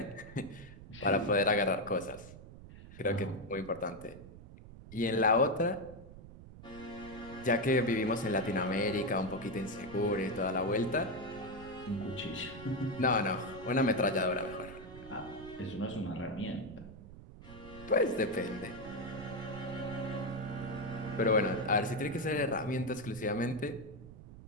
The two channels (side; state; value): right; noise; rumble, 16 dB below the sound